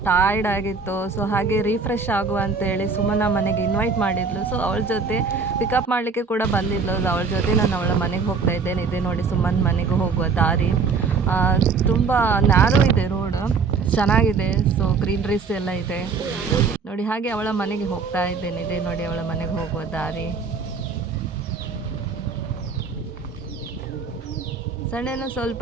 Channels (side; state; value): left; quieter; 5.0 dB